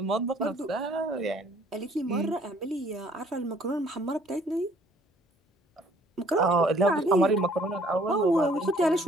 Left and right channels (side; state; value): both; normal; correlation 0.59